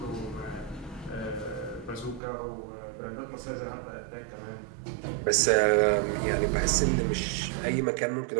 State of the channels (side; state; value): left; drops out; at 2.2 s